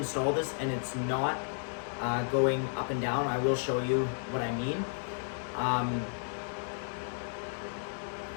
this and it's not going up and down, I will show you what I mean.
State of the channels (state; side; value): silent; right; 56 dB below the other